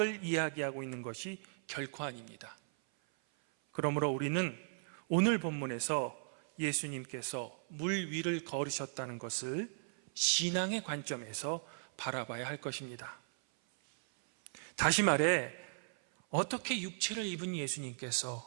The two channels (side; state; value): left; silent; 53 dB below the other